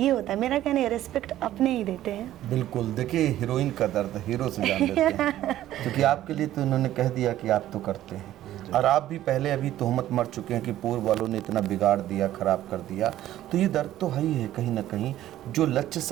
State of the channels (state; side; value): quieter; left; 13.4 dB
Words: होता है मेरा कहना है, रिस्पेक्ट अपने ही देते हैं। बिल्कुल, देखिए हीरोइन का दर्द हीरो से जान लेते हैं क्योंकि आपके लिए तो इन्होंने कह दिया कि आप तो करते हैं, और आप भी पहले अभी तोहमत मर चुके हैं कि पूर्व वालों ने इतना बिगाड़ दिया, खराब कर दिया, तो ये दर्द तो है ही है कहीं ना कहीं। जो लक्ष्य